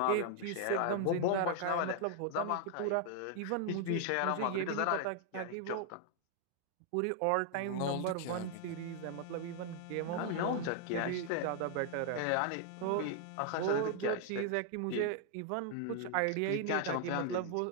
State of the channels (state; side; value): different; both; correlation 0.00